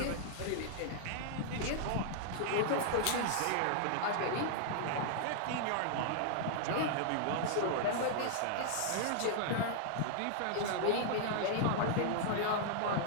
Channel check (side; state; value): both; different; correlation -0.01